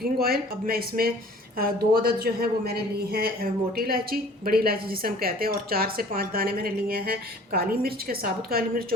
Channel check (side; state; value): both; normal; correlation 0.50